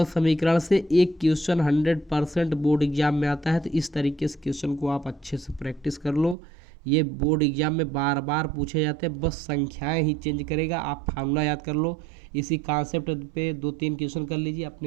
समीकरण से एक क्वेश्चन 100% बोर्ड एग्जाम में आता है। तो इस तरीके से क्वेश्चन को आप अच्छे से प्रैक्टिस कर लो। ये बोर्ड एग्जाम में बार बार पूछे जाते हैं, बस संख्याएं ही चेंज करेगा। आप फार्मूला याद कर लो, इसी कॉन्सेप्ट पे 2-3 क्वेश्चन कर लीजिए,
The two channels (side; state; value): left; drops out; at 6.4 s